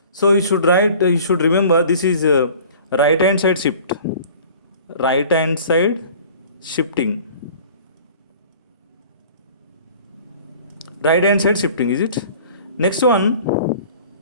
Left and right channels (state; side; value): inverted; both; correlation -0.46